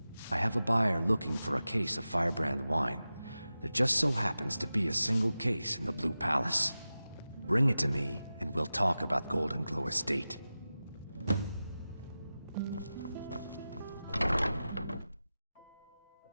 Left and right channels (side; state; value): both; inverted; correlation -0.94